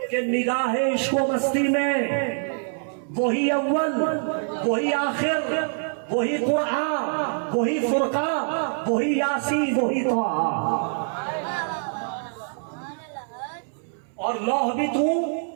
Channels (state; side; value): silent; left; 62 dB below the other